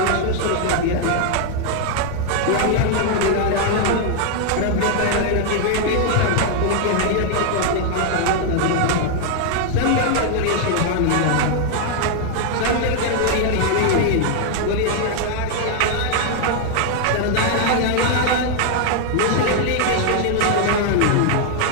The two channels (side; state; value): both; different; correlation 0.00